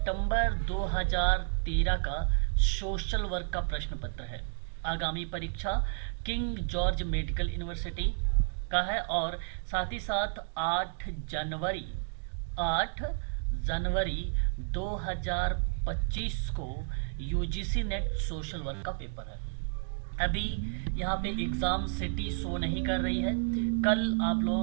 2013 का सोशल वर्क का प्रश्न पत्र है। आगामी परीक्षा किंग जॉर्ज मेडिकल यूनिवर्सिटी का है और साथ ही साथ 8 जनवरी 2025 को यूजीसी नेट सोशल वर्क का पेपर है। अभी यहाँ पे एग्ज़ाम सिटी शो नहीं कर रही है। कल आप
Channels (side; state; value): left; silent; digital silence